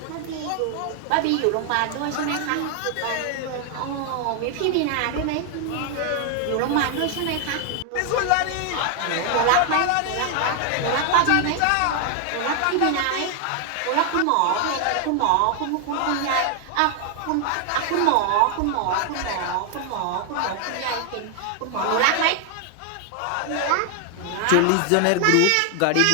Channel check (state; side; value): different; both; correlation 0.00